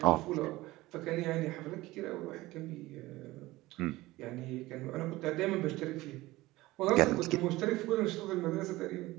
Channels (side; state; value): left; quieter; 18.8 dB